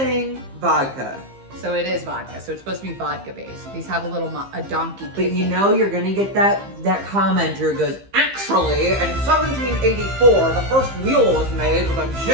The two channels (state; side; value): late; left; 15 ms